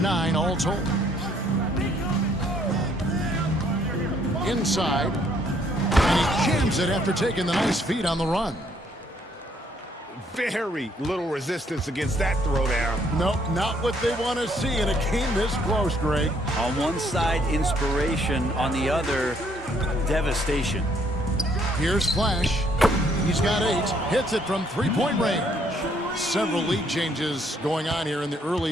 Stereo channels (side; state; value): both; normal; correlation 0.67